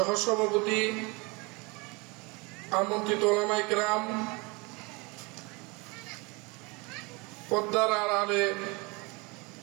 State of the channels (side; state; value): left; quieter; 27.6 dB